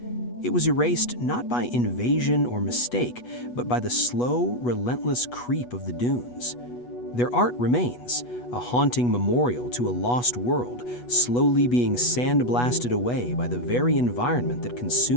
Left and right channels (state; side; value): late; right; 8.2 ms